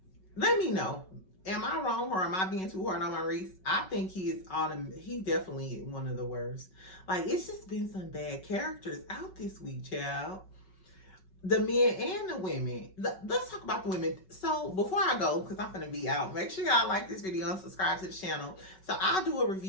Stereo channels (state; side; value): late; right; 5.3 ms